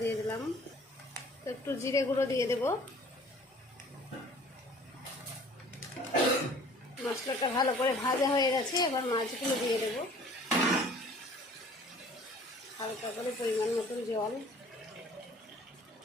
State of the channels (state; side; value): normal; both; correlation 0.51